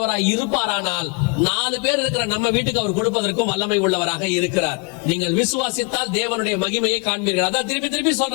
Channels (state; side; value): quieter; right; 30.6 dB